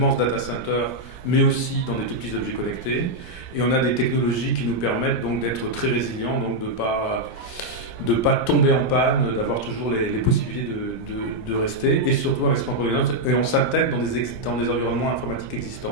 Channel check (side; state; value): right; late; 17 ms